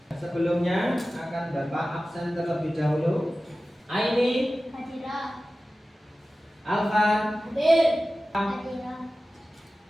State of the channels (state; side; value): normal; both; correlation 0.96